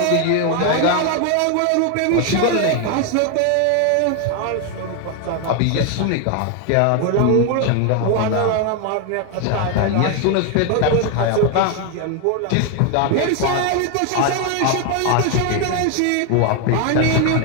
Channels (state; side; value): different; both; correlation 0.01